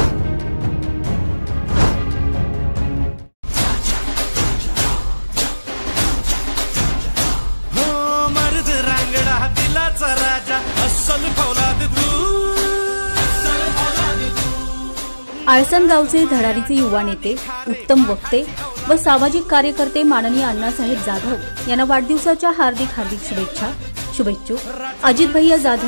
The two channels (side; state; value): both; inverted; correlation -1.00